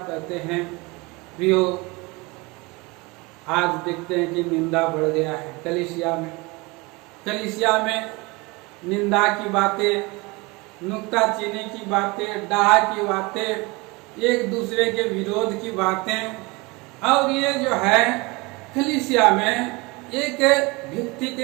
हैं प्रियो, आज देखते हैं कि निंदा बढ़ गया है कलीसिया में। कलीसिया में निंदा की बातें, नुक्ताचीनी की बातें, डाह की बातें, एक दूसरे के विरोध की बातें, और ये जो है कलीसिया में एक व्यक्ति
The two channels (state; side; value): quieter; left; 25.1 dB